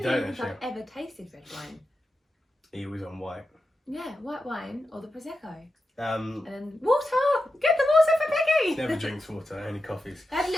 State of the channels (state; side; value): normal; both; correlation 0.90